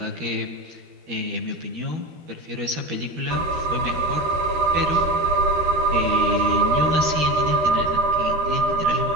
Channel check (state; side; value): late; left; 13 ms